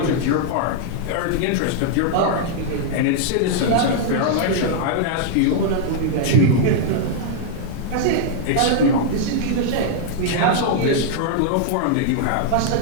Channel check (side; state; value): both; different; correlation -0.01